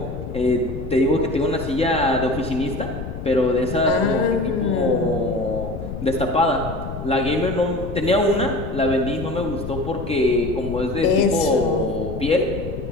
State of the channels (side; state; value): left; noise; rumble, 8 dB below the sound